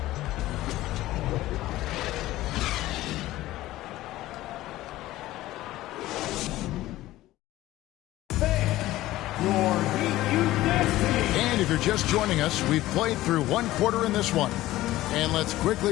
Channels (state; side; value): quieter; right; 16.2 dB